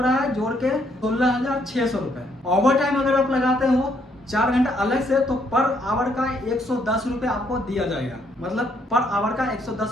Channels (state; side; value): normal; both; correlation 0.71